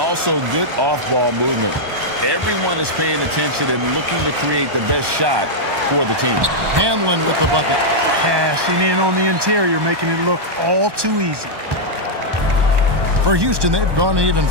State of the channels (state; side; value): late; left; 1.2 ms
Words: good off-ball movement. Everyone is paying attention and looking to create the best shot for the team. Hanlon with the bucket. Cashing in on the interior, making it look all too easy. For Houston, they've gone even